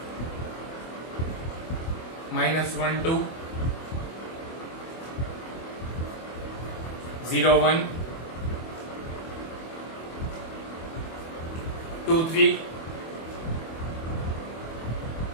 minus 1, 2, 0, 1, 2, 3,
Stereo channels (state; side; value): late; right; 24 ms